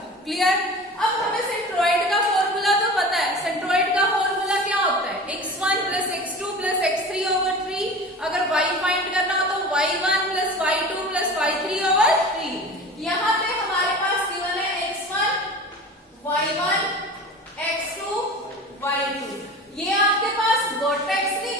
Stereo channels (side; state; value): both; normal; correlation 0.36